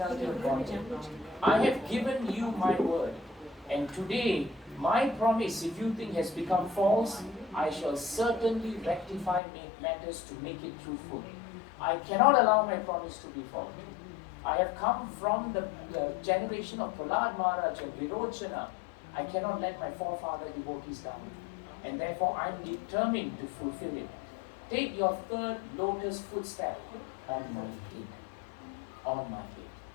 of Godhead, I have given you my word. And today, my promise, if you think has become false, I shall certainly rectify matters to make it truthful. I cannot allow my promise to be false. I have come from the generation of Prahlad Maharaj and Virochana. I cannot let my forefather devotees down. And therefore I am determined to fulfill it. Take your 3rd lotus footstep on my head. On my head."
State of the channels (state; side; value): drops out; right; at 9.4 s